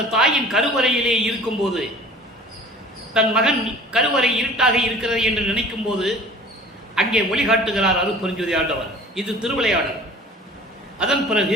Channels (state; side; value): normal; both; correlation 0.46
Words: தாயின் கருவறையிலே இருக்கும்போது, தன் மகன் கருவறை இருட்டாக இருக்கிறது என்று நினைக்கும் போது அங்கே ஒளிகாட்டுகிறார் அருட்பெருஞ்சோதி ஆண்டவர். இது திருவிளையாடல். அதன்